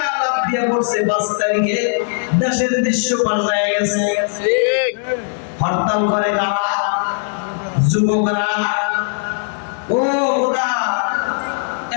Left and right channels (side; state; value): right; silent; digital silence